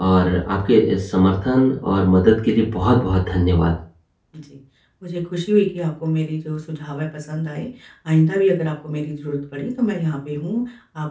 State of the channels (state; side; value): identical; both; correlation 1.00